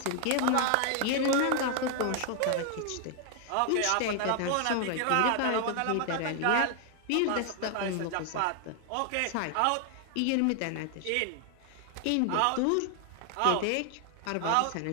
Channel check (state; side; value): different; both; correlation 0.00